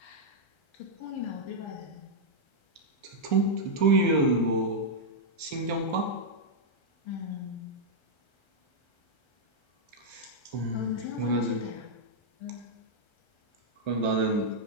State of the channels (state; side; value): late; right; 1.3 ms